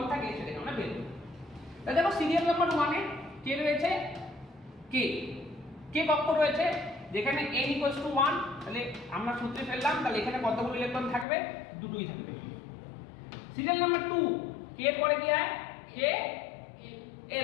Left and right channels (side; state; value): right; drops out; at 11.2 s